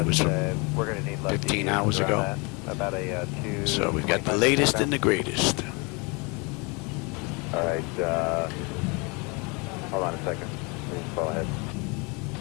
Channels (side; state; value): right; quieter; 29.8 dB